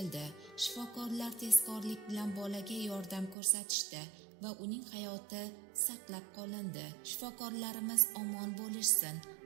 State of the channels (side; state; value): left; drops out; at 3.4 s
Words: Shifokorlar tezkorlik bilan bolaga yordam ko'rsatishdi va uning hayoti saqlab qolindi. Shifokorlarimiz omon bo'lishsin.